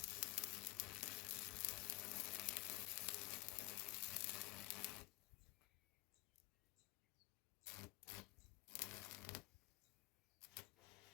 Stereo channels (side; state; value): right; quieter; 21.5 dB